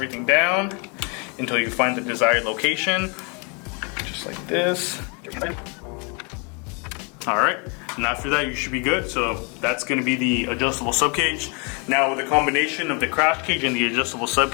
down until you find the desired location, just like this. All right, and after that you should be good. So that's going to be the adjustable subcage. Now with the combination of the crash cage and the adjustable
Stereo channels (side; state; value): right; quieter; 33.9 dB